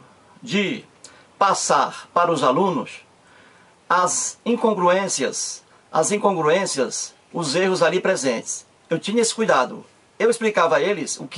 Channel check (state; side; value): identical; both; correlation 1.00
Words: de passar para os alunos as incongruências, os erros ali presentes. Eu tinha esse cuidado. Eu explicava a eles o